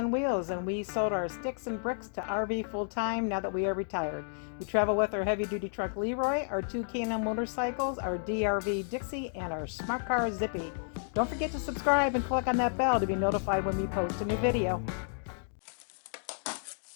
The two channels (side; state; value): right; silent; digital silence